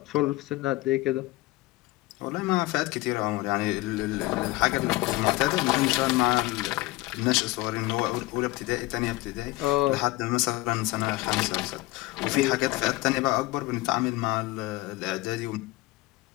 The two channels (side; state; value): right; quieter; 20.0 dB